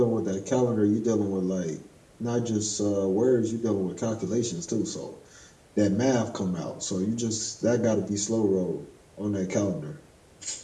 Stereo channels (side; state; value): both; identical; correlation 1.00